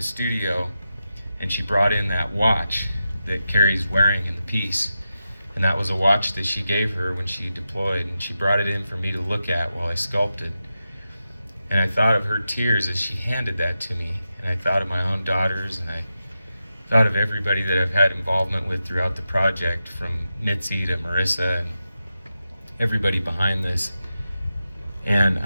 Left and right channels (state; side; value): inverted; both; correlation -0.90